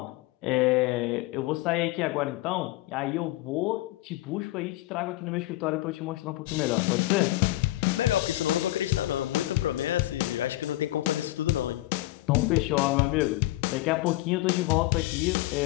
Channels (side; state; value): right; quieter; 17.6 dB